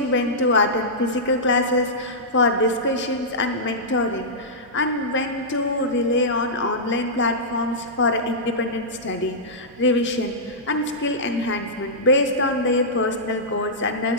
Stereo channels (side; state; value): right; noise; hum, 28 dB below the sound